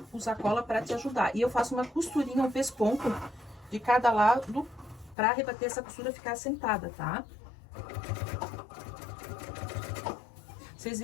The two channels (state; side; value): drops out; right; at 5.2 s